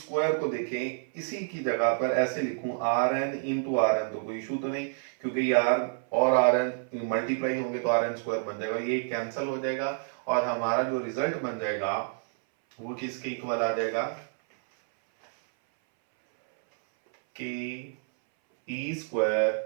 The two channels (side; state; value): left; silent; 59 dB below the other